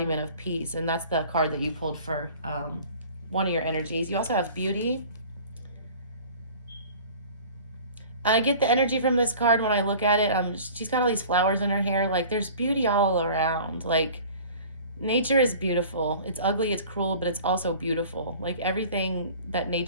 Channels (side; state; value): both; inverted; correlation -0.44